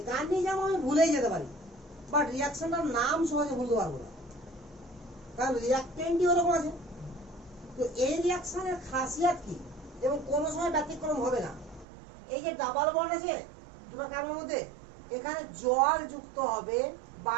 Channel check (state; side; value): drops out; left; at 11.9 s